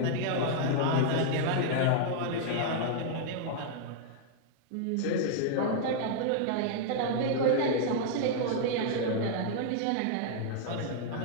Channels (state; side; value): different; both; correlation -0.01